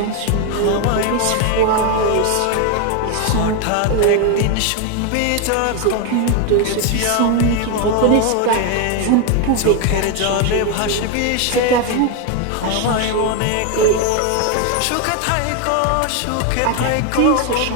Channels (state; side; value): different; both; correlation 0.01